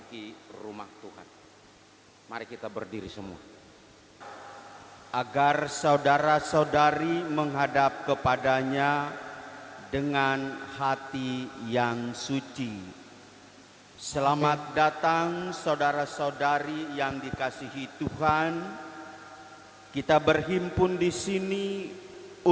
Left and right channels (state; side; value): identical; both; correlation 1.00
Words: rumah Tuhan. Mari kita berdiri semua. Agar saudara-saudari menghadap kepadanya dengan hati yang suci. Selamat datang saudara-saudari yang dikasihi Tuhan. Kita berhimpun di sini